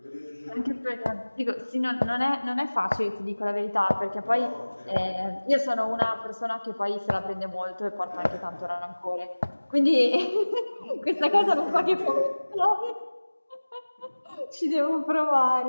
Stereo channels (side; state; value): both; inverted; correlation -1.00